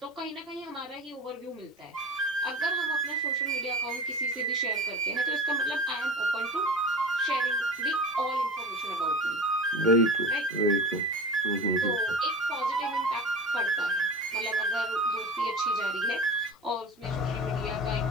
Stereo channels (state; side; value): normal; both; correlation 0.34